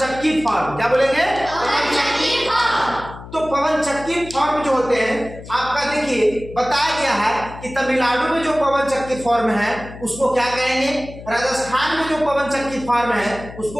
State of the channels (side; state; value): left; noise; hum, 15 dB below the sound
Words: फार्म। क्या बोलेंगे? पवन चक्की फार्म। तो पवन चक्की फार्म जो होते हैं आपका देखिए बताया गया है कि तमिलनाडु में जो पवन चक्की फार्म है उसको क्या कहेंगे, राजस्थान में जो पवन चक्की फार्म है